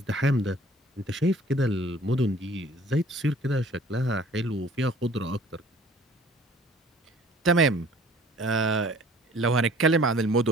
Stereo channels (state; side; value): normal; both; correlation 0.52